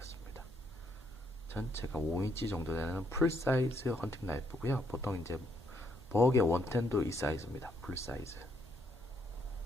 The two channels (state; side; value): normal; both; correlation 0.73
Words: 전체가 5인치 정도 되는 풀사이즈 헌팅 나이프고요. 보통 이제 버그의 원텐도 이 사이즈입니다. 풀사이즈.